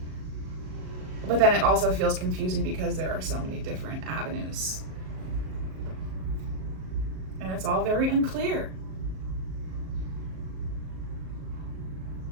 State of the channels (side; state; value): left; late; 38 ms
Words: But then it also feels confusing because there are so many different avenues. And it's all very unclear.